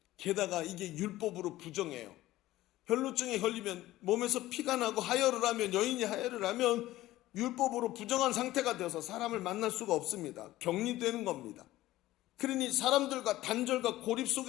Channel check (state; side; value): quieter; right; 16.0 dB